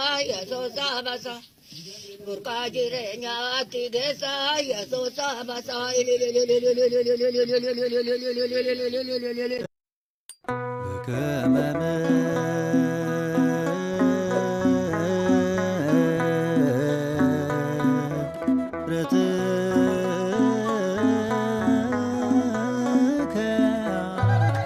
yaso sabasa burka jirenya tigesa yaso sabasa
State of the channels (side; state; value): both; identical; correlation 1.00